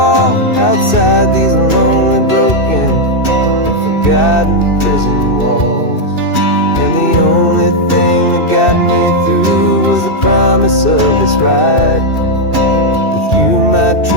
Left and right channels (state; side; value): late; right; 2.6 ms